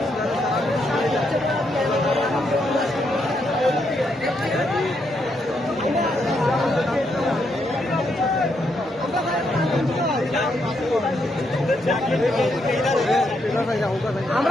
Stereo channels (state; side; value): normal; both; correlation 0.78